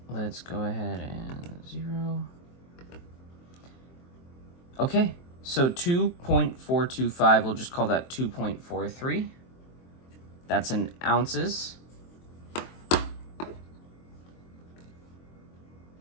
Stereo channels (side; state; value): right; late; 23 ms